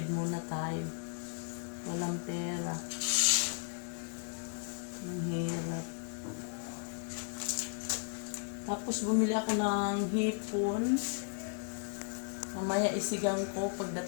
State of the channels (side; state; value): right; silent; 54 dB below the other